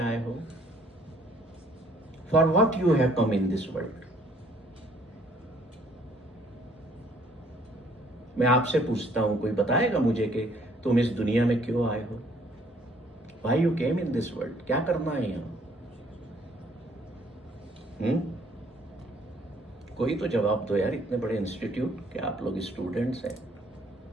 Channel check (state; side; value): normal; both; correlation 0.62